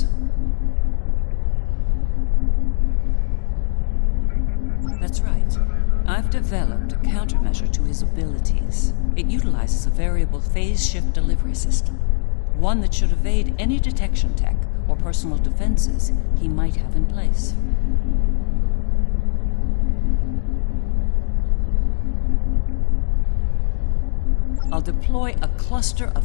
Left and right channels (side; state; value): right; silent; 66 dB below the other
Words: That's right. I've developed a countermeasure to his abilities. It utilizes a variable phase shift delivery system. One that should evade any detection tech or personal defenses he might have in place. I'll deploy a cluster of